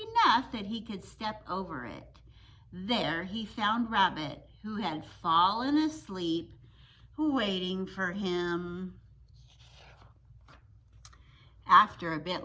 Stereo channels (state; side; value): identical; both; correlation 1.00